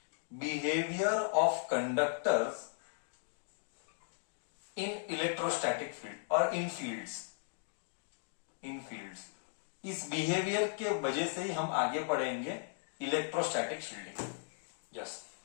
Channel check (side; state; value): right; silent; digital silence